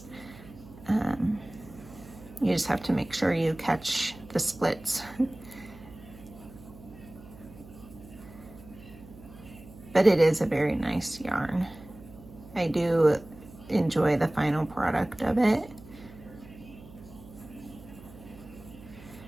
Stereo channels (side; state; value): right; noise; hum, 19 dB below the sound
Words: You just have to make sure you catch the splits. But it is a very nice yarn. I do enjoy the final product of it.